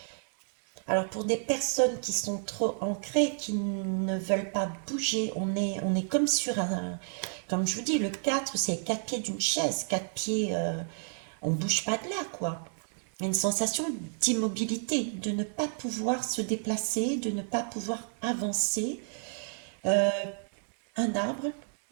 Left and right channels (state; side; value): silent; left; digital silence